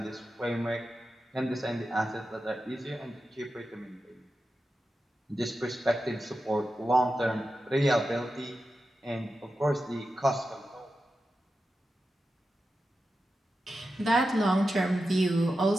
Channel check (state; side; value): normal; both; correlation 0.91